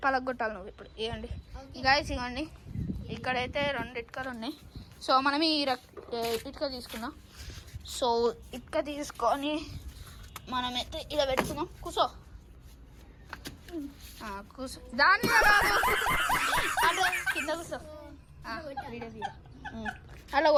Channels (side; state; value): both; identical; correlation 1.00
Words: పలగొట్టాలి. నువ్వు ఇప్పుడు ఇవ్వండి గైస్, ఇవ్వండి. ఇక్కడైతే 2 ఇటుకలు ఉన్నాయి. సో మనం ఈ ఇటుక తీసుకుందాం. సో ఇటుక తీసుకొని మనమైతే ఇలా పెట్టుకుందాం. కూసో కూసో, దాని కింద కూసో. అలా